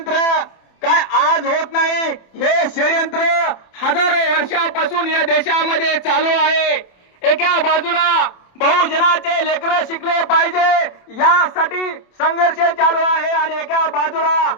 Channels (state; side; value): late; right; 27 ms